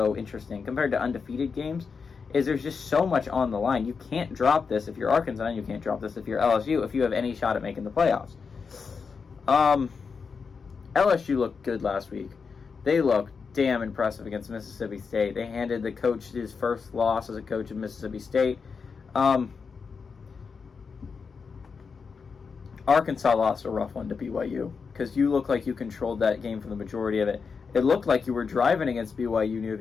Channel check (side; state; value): right; quieter; 5.4 dB